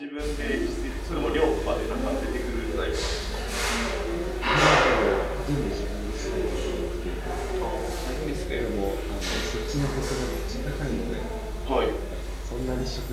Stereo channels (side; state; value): both; identical; correlation 1.00